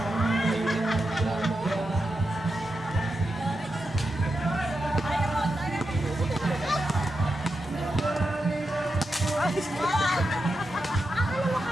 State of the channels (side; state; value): both; normal; correlation 0.88